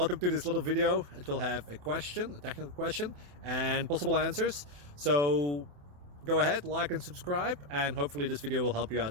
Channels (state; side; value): late; left; 28 ms